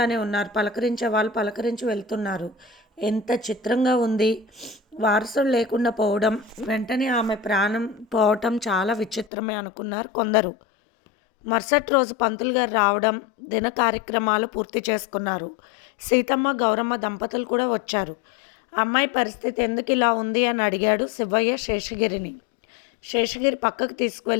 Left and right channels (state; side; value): drops out; right; at 9.3 s